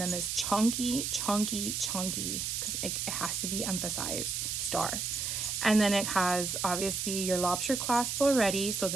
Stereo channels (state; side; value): noise; right; hiss, 2 dB below the sound